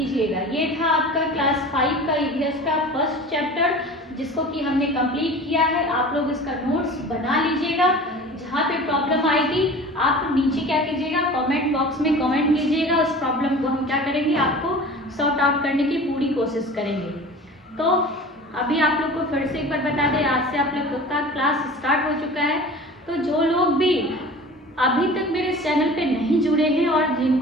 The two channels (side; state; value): both; normal; correlation 0.39